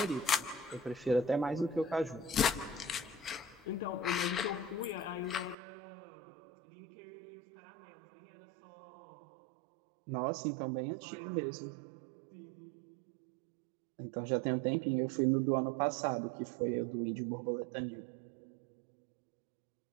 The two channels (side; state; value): left; drops out; at 5.6 s